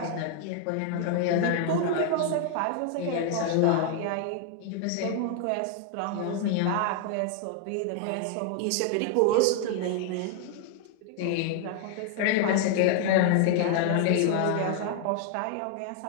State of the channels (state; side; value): different; both; correlation 0.00